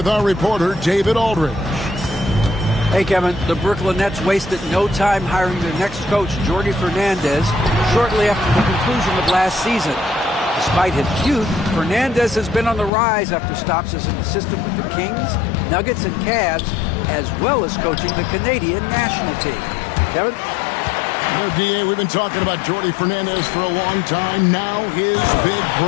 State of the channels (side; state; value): right; drops out; at 12.9 s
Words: our reporter, David Aldridge. Hey, Kevin, the Brooklyn Nets wasted no time hiring their next coach, Jordi Fernandez, shortly after the conclusion of last season. Despite his youth, Fernandez has been on the rise after stops as an assistant with the Kings, Nuggets, and Cavs, as well as coaching the Canadian national team. Kevin? You know, D.A., we've been talking about Jordi Fernandez for a long time. Now his big